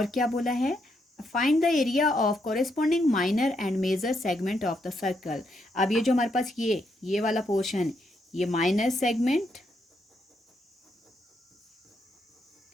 क्या बोला है? Find the area of corresponding minor and major segment of the circle. अब ये जो हमारे पास ये वाला पोर्शन, ये माइनर सेगमेंट।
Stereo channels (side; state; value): both; normal; correlation 0.78